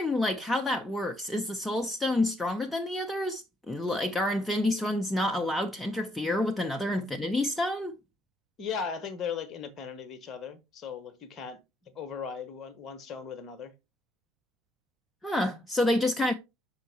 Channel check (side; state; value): both; normal; correlation 0.74